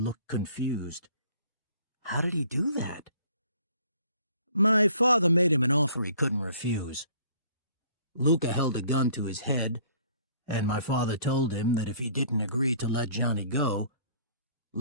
confused. How did he do that? My father made him an offer he couldn't refuse. Luca held a gun to his head, and my father told him that if he didn't agree to let Johnny go,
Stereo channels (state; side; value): inverted; both; correlation -0.56